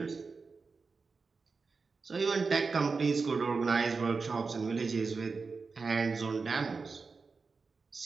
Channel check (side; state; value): left; quieter; 4.5 dB